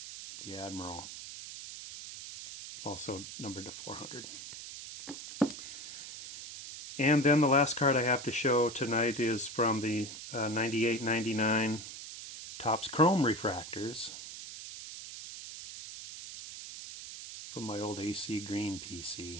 The Admiral. Also numbered to 400. And then the last card I have to show tonight is from the 98-99 Topps Chrome refractors from my old AC Green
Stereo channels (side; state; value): right; noise; hiss, 11 dB below the sound